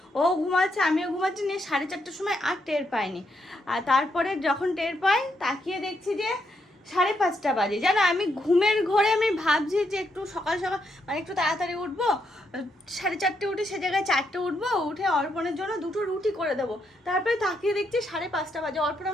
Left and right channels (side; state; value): both; normal; correlation 0.78